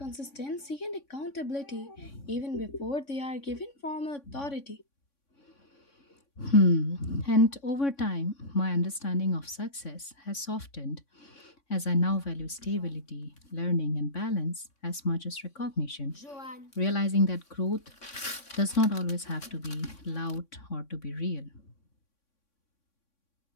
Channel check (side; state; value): right; late; 3.6 ms